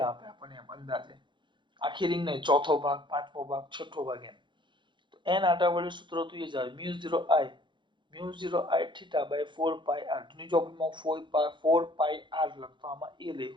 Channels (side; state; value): left; late; 0.23 ms